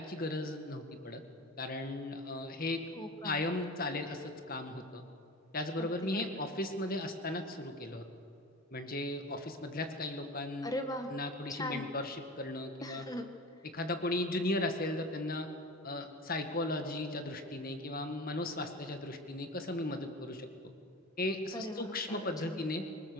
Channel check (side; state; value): both; normal; correlation 0.33